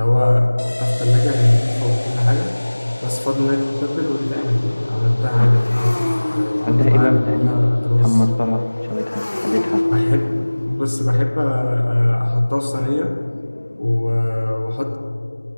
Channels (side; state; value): both; inverted; correlation -1.00